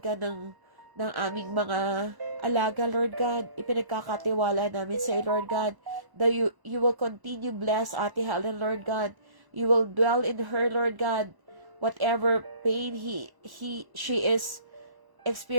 ng aming mga alaga, Lord God. Ipinagkakatiwala namin sa iyo, Lord God, that you will continue bless Ate Helen, Lord God. You will dwell in her, Lord God. Whatever pain she is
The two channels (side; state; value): left; late; 1.0 ms